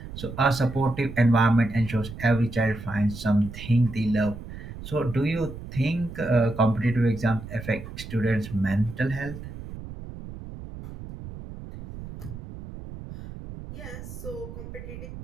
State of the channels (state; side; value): noise; right; rumble, 12 dB below the sound